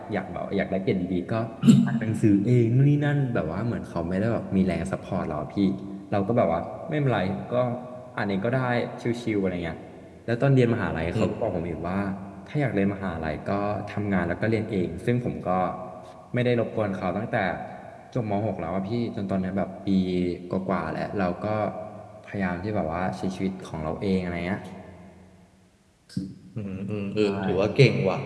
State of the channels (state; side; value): identical; both; correlation 1.00